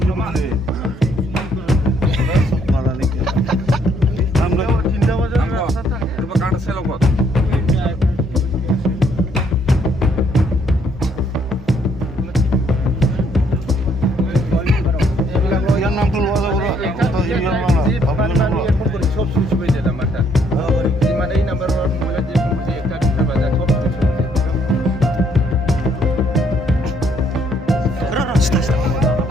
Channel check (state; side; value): normal; both; correlation 0.68